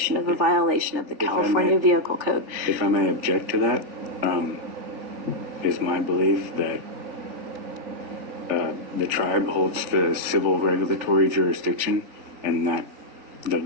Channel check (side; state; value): left; late; 3.4 ms